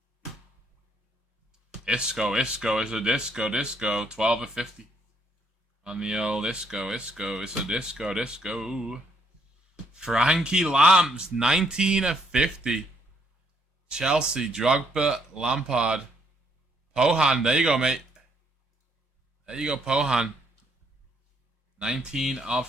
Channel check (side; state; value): both; normal; correlation 0.70